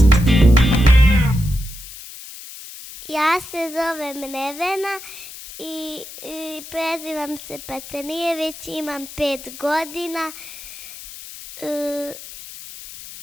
Ja se zovem Nevena i prezivam se Patanijević, imam 5 godina.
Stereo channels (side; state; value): left; noise; hiss, 14 dB below the sound